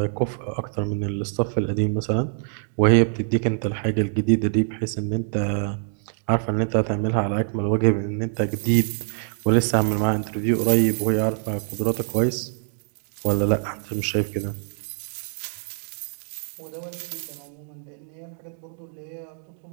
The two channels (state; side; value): silent; left; digital silence